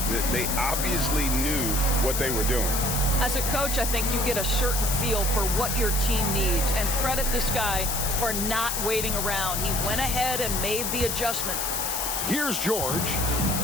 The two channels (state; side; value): noise; left; hiss, 1 dB below the sound